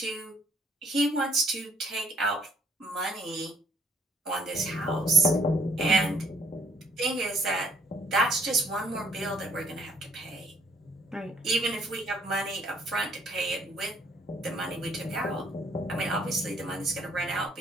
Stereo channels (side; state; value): both; normal; correlation 0.65